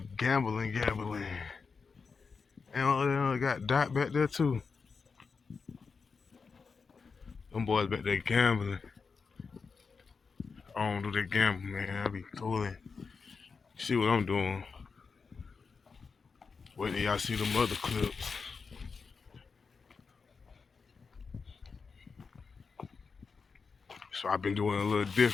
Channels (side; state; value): right; quieter; 5.1 dB